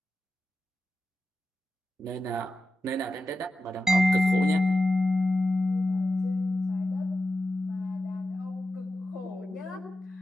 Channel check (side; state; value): both; normal; correlation 0.91